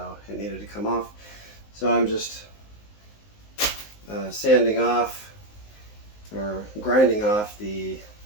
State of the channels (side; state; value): right; late; 19 ms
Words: it needed to come off. So I'm just sanding off or grinding off the